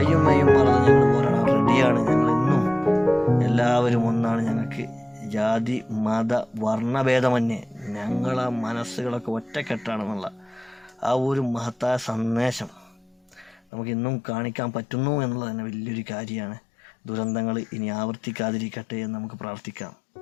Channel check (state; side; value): drops out; right; at 13.6 s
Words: മെയ്യും മറന്ന് ഞങ്ങൾ പോരാടാൻ റെഡിയാണ്. ഞങ്ങളിന്നും എല്ലാവരും ഒന്നാണ്. ഞങ്ങൾക്ക് ജാതി, മത, വർണ്ണഭേദമന്യേ ഞങ്ങളെ മനസ്സുകളൊക്കെ ഒറ്റക്കെട്ടാണെന്നുള്ള ആ ഒരു മഹത്തായ സന്ദേശം നമുക്കിന്നും കാണിക്കാൻ പറ്റുന്നു എന്നുള്ളത് തന്നെ വലിയൊരു കാര്യമാണ്. ദുരന്തങ്ങൾ ഇനി ആവർത്തിക്കാതിരിക്കട്ടെ എന്ന് നമുക്ക് പ്രാർത്ഥിക്കാം.